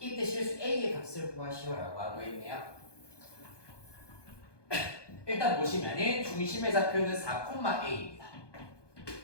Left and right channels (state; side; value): late; right; 1.2 ms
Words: 실수 a의 값을 구하시오라고 하고 있네요. 일단 보시면은 중심의 좌표는 4,a입니다.